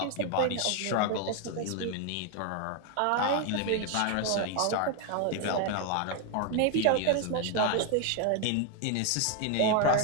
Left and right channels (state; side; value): different; both; correlation 0.01